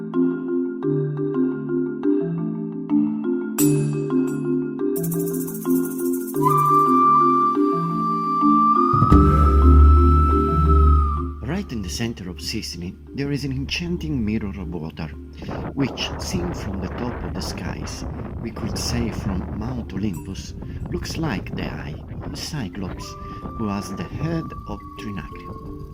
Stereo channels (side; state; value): both; identical; correlation 1.00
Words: in the center of Sicily, there is an enchanting mirror of water, which, seen from the top of the skies, we could say from Mount Olympus, looks like the eye of a Cyclops who has the head of Trinacria.